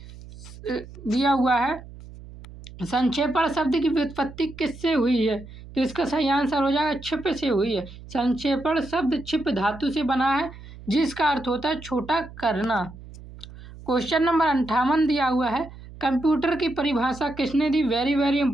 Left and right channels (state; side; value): noise; right; hum, 17 dB below the sound